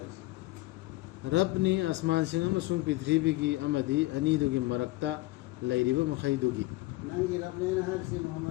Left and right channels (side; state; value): right; quieter; 19.3 dB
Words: रब ने आसमान सिंह अमसुंग पृथ्वी की अमदी अनीदुगी मरक्ता लैरिब मखैदुगी नंगी रब ने हासी